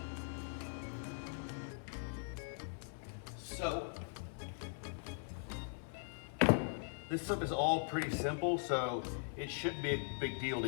So, this stuff is all pretty simple, so it shouldn't be a big deal to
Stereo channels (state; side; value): silent; right; 51 dB below the other